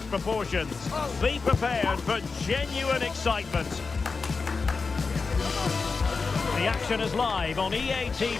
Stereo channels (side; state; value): right; quieter; 4.5 dB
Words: proportions. Be prepared for genuine excitement. The action is live on EA